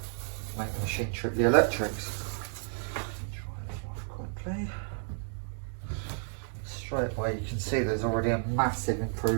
make the machine trip the electrics. Try it off quickly. Straight away you can see there's already a massive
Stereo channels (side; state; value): left; silent; 57 dB below the other